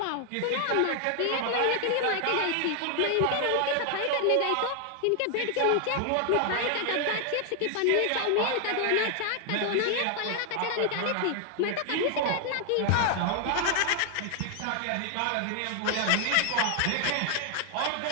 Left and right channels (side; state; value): both; different; correlation 0.00